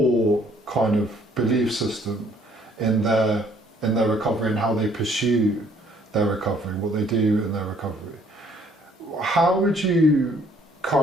kind of belief system in their recovery and how they pursue their recovery, what they do in their recovery. How would you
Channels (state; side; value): normal; both; correlation 0.62